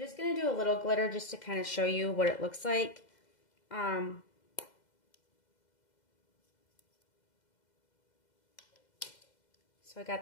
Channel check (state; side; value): late; right; 2.0 ms